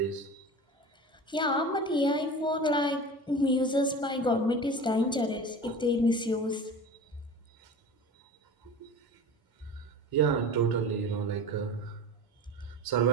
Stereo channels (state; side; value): normal; both; correlation 0.34